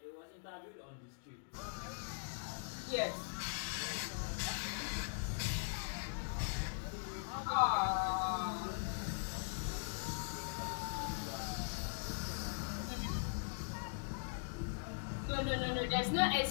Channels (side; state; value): right; silent; digital silence